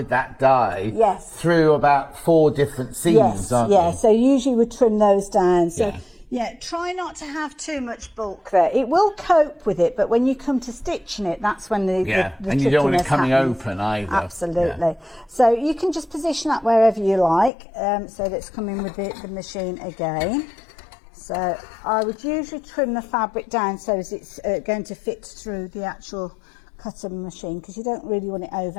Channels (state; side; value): drops out; right; at 17.5 s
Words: that die through about 4 different seams, aren't you? So usually we trim those down. So. Yeah. Yeah, try not to have too much bulk there. It will cope with it, but when you come to stitching it, that's when the and you don't want it coming happens. open either. Absolutely. Yeah. So you can just position that wherever you like, so that it's coming with the machine again. So I would usually trim the fabric down so as it's going to fit through the actual cutter machine, because you don't really want it